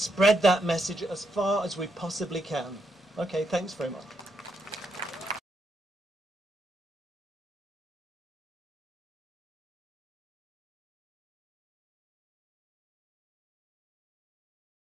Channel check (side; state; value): both; normal; correlation 0.79